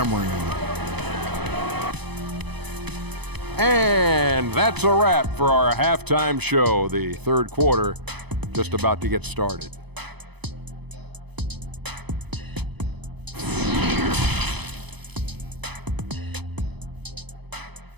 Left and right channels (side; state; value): left; late; 0.99 ms